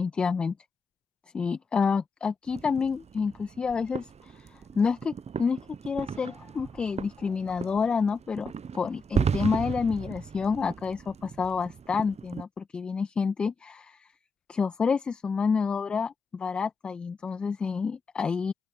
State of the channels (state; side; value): quieter; right; 3.8 dB